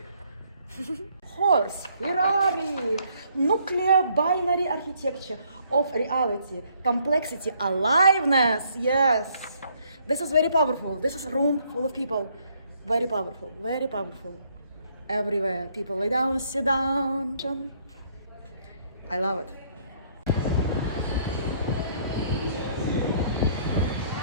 Horse, Ferrari, nuclear binary architecture of reality, complexity, aliveness. Yes, this is very powerful. This is a room full of people. Very powerful, very powerful. Everywhere, people lay down, sit down. I love it.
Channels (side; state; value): both; inverted; correlation -0.67